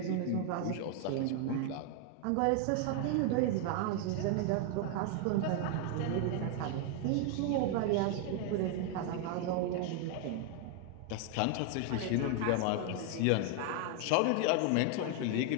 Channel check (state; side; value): different; both; correlation 0.01